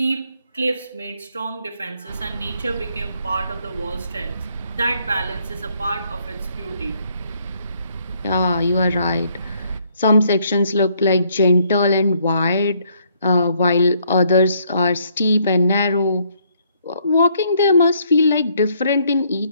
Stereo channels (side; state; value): both; inverted; correlation -0.68